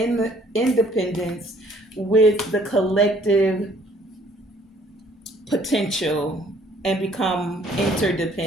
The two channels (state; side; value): normal; both; correlation 0.60